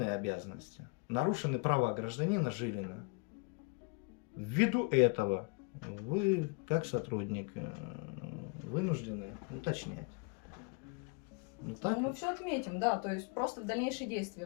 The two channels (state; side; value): quieter; right; 32.6 dB